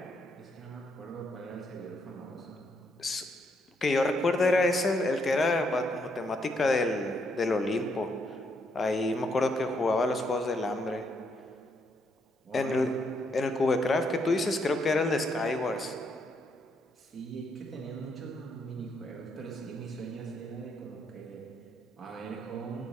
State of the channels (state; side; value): normal; both; correlation 0.75